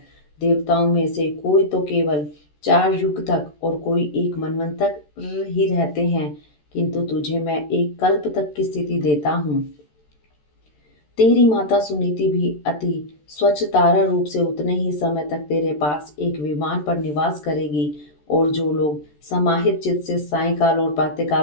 देवताओं में से कोई तो केवल 4 युग तक और कोई एक मनवंतर ही रहते हैं, किंतु तुझे मैं एक कल्प तक की स्थिति देता हूँ। तेरी माता सुनीति भी अति स्वच्छ तारा रूप से उतने ही समय तक तेरे पास एक विमान पर निवास करेगी, और जो लोग समाहित चित्त से सायंकाल और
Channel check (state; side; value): late; right; 13 ms